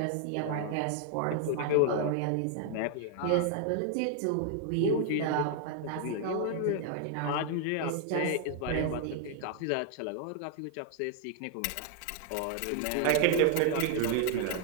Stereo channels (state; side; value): different; both; correlation 0.00